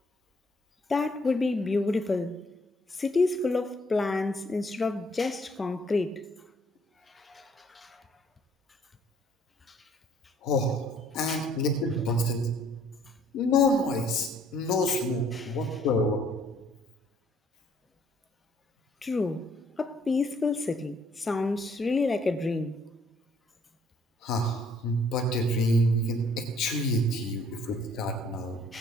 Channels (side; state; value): both; normal; correlation 0.62